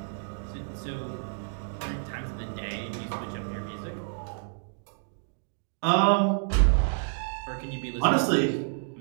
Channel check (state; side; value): silent; left; digital silence